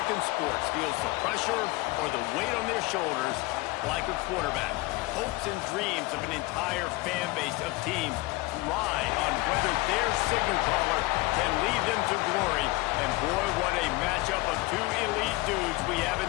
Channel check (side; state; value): right; quieter; 21.9 dB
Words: sports feels the pressure or the weight on their shoulders like a quarterback. Hopes and dreams of an entire fan base of teams ride on whether their signal caller can lead them to glory. And boy, what a matchup of two elite dudes we have